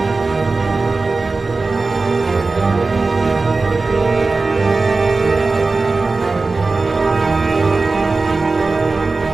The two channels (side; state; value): left; quieter; 3.7 dB